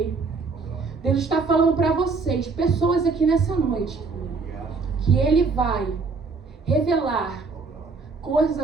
Deus está falando para vocês, pessoas aqui nessa noite, que Ele vai revelar coisas a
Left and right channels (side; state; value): left; quieter; 4.4 dB